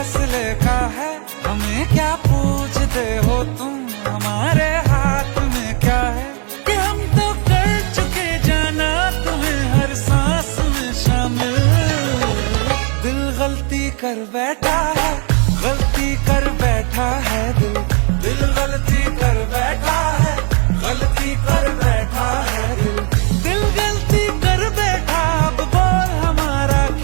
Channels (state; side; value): quieter; left; 36.9 dB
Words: का है। हमें क्या पूछते हो तुम, हमारे हाथ में क्या है कि हम तो कर चुके जाना तुम्हें हर सांस में शामिल। दिल गलती कर बैठा है, गलती कर बैठा है दिल। दिल गलती कर बैठा है, गलती कर बैठा है दिल। दिल गलती कर बैठा, अब बोल हमारा